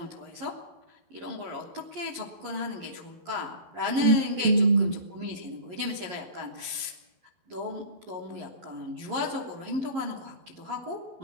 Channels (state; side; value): late; left; 11 ms